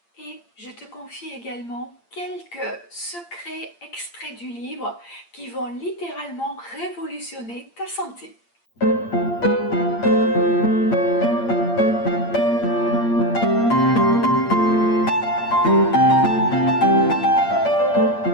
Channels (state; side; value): late; right; 8.7 ms